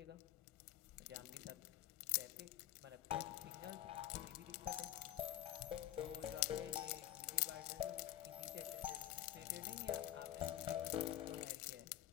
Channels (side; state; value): right; quieter; 12.9 dB